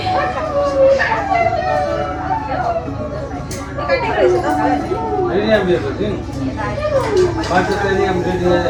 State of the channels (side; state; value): both; identical; correlation 1.00